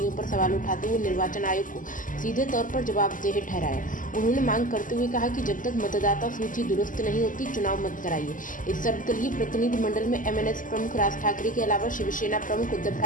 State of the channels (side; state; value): right; late; 0.38 ms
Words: पर सवाल उठाते हुए निर्वाचन आयोग को सीधे तौर पर जवाबदेह ठहराया। उन्होंने मांग करते हुए कहा कि जब तक मतदाता सूची दुरुस्त नहीं होती, चुनाव मत कराइए। इस सर्वदलीय प्रतिनिधिमंडल में एमएनएस प्रमुख राज ठाकरे के अलावा शिवसेना प्रमुख उद्धव